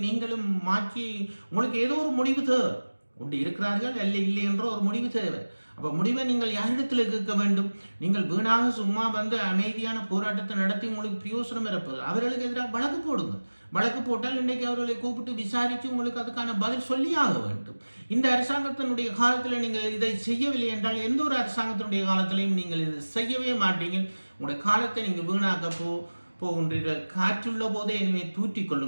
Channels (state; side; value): inverted; both; correlation -1.00